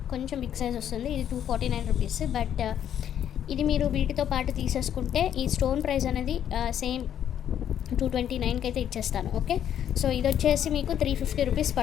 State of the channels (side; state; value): right; quieter; 9.9 dB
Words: బిగ్ సైజ్ వస్తుంది. ఇది 249 రూపీస్. బట్ ఇది మీరు వీటితో పాటు తీసేసుకుంటే ఈ స్టోన్ ప్రైస్ అనేది సేమ్ 229కి అయితే ఇచ్చేస్తాను. ఓకే, సో ఇది వచ్చేసి మీకు 350 రూపీస్